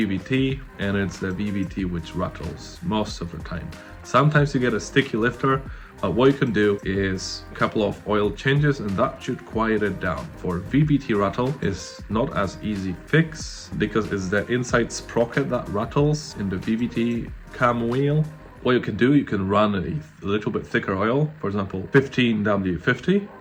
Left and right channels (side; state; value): both; identical; correlation 1.00